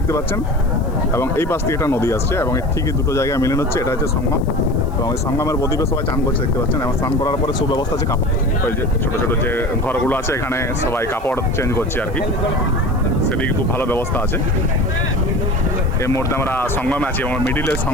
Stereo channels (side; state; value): left; noise; hiss, 28 dB below the sound